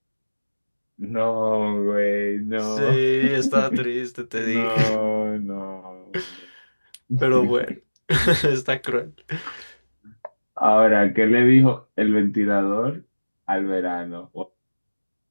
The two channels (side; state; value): both; inverted; correlation -1.00